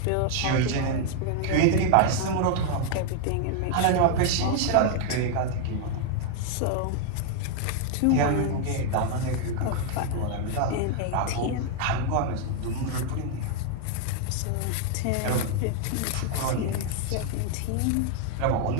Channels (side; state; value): both; different; correlation 0.00